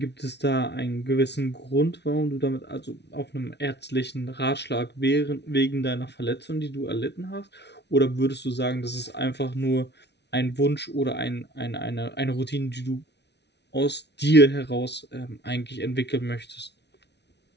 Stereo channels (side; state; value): right; late; 0.50 ms